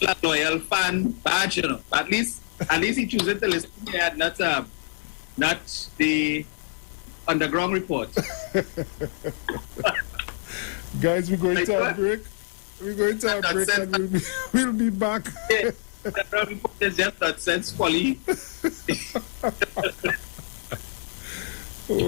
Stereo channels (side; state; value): right; quieter; 37.2 dB